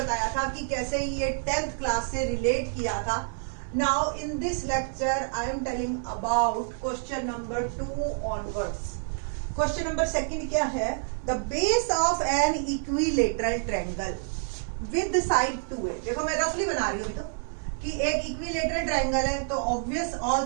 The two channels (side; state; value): left; silent; digital silence